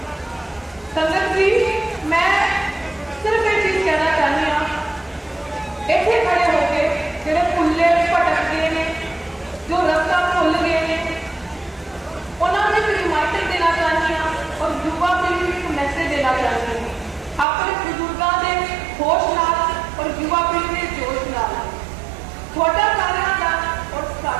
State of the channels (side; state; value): left; drops out; at 17.4 s